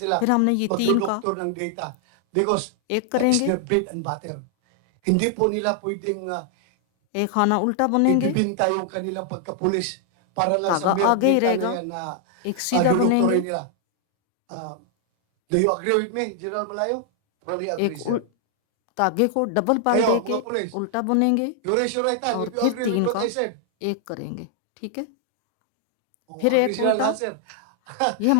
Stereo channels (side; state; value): both; different; correlation 0.00